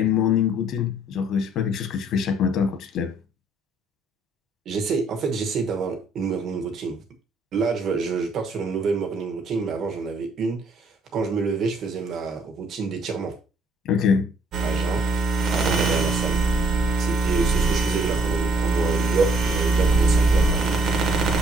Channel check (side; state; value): both; normal; correlation 0.64